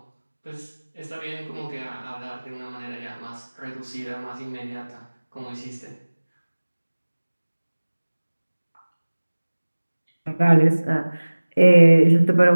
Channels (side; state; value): both; inverted; correlation -1.00